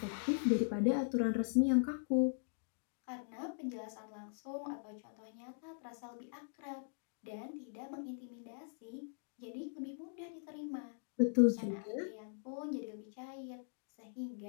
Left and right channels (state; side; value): silent; right; digital silence